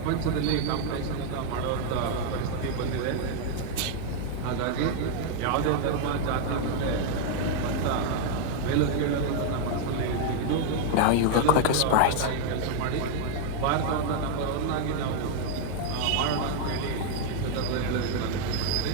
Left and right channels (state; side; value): different; both; correlation 0.00